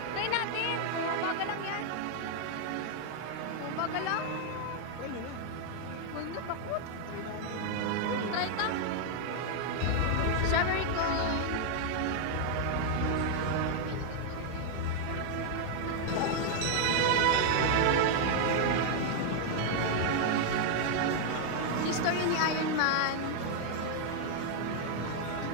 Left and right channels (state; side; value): different; both; correlation 0.00